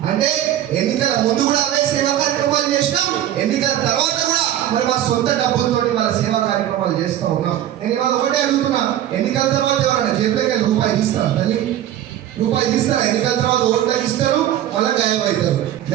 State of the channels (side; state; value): left; quieter; 11.9 dB